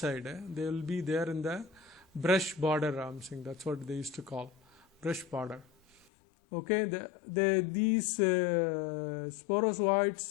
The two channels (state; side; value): drops out; right; at 6.1 s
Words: They will be there in the brush border. I'm saying that's what they used to call brush border. Okay, these